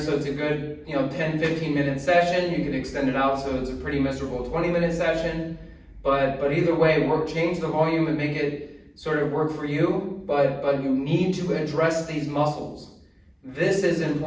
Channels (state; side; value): identical; both; correlation 1.00